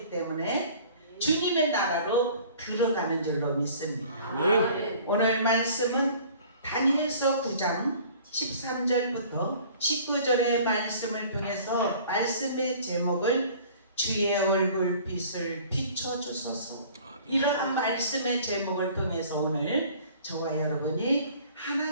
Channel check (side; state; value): both; inverted; correlation -0.49